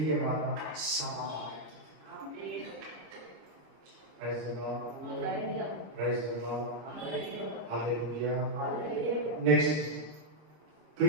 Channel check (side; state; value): left; late; 26 ms